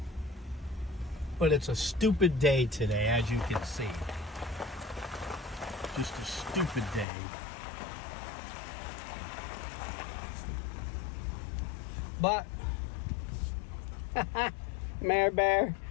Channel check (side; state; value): right; drops out; at 7.1 s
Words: But it's a stupid day today, as you can see. Just a stupid day. But Mare Bear